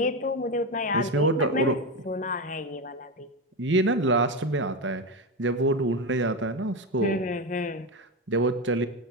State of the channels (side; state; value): both; normal; correlation 0.15